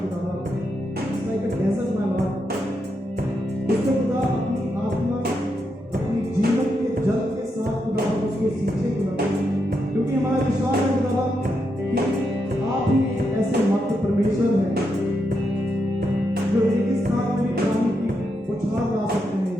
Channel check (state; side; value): normal; both; correlation 0.83